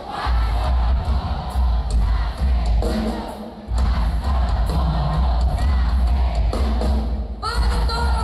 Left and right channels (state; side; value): identical; both; correlation 1.00